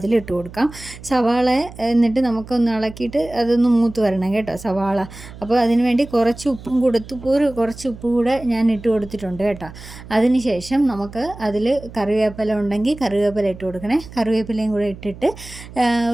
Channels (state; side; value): noise; right; hum, 16 dB below the sound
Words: കൊടുക്കാം. സവാള എന്നിട്ട് നമുക്കൊന്ന് ഇളക്കിയിട്ട് അതൊന്ന് മൂത്ത് വരണം കേട്ടോ സവാള. അപ്പോൾ അതിന് വേണ്ടി കുറച്ച് ഉപ്പും കൊടുത്ത് കുറച്ച് ഉപ്പ് കൂടെ ഞാൻ ഇട്ട് കൊടുത്തിട്ടുണ്ട് കേട്ടോ. അതിനുശേഷം നമുക്ക് അതിൽ കറിവേപ്പില ഉണ്ടെങ്കിൽ കറിവേപ്പില ഇട്ട് കൊടുക്കണേ. കറിവേപ്പിലയും കൂടെ ഇട്ടിട്ട്